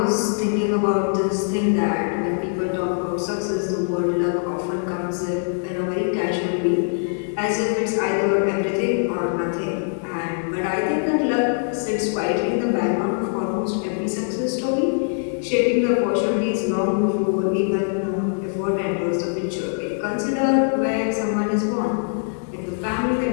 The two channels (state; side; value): silent; right; digital silence